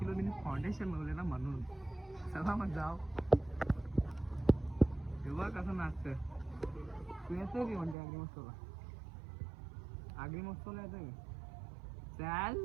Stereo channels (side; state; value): left; drops out; at 8.0 s